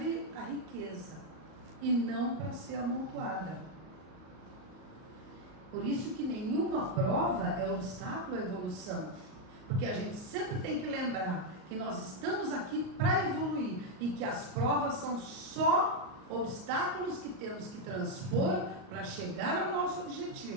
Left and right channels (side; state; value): left; late; 38 ms